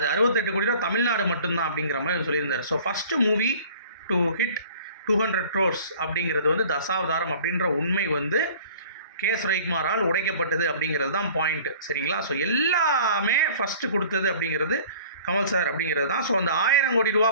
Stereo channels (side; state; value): both; inverted; correlation -0.47